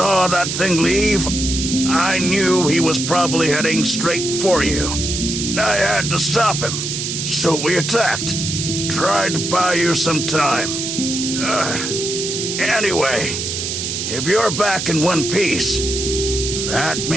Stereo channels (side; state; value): right; noise; hiss, 3 dB below the sound